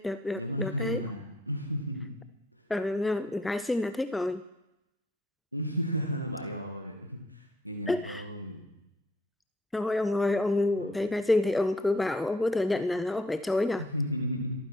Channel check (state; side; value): normal; both; correlation 0.61